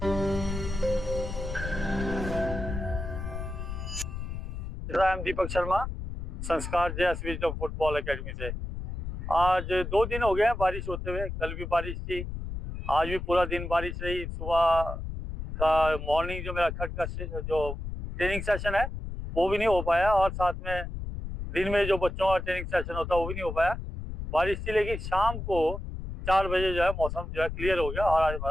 राम दीपक शर्मा संस्कार जेएसवी जो फुटबॉल एकेडमी से। आज 2 दिन हो गए हैं बारिश होते हुए। कल भी बारिश थी, आज भी पूरा दिन बारिश रही। सुबह का मॉर्निंग जो मेरा खट का जो ट्रेनिंग सेशन है वो भी नहीं हो पाया, और साथ में दिन में जो बच्चों का ट्रेनिंग सेशन होता है वो भी नहीं हो पाया, बारिश थी। लेकिन शाम को 4 बजे जो है मौसम जो है क्लियर हो गया और आज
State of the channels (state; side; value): noise; left; rumble, 6 dB below the sound